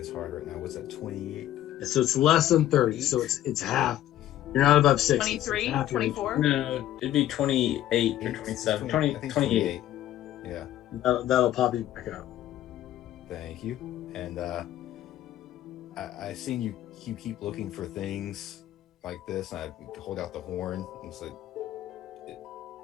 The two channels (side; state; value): right; quieter; 13.0 dB